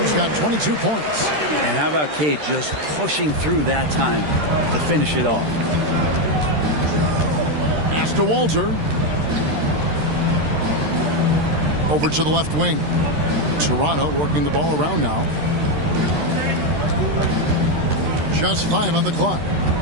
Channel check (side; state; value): left; late; 13 ms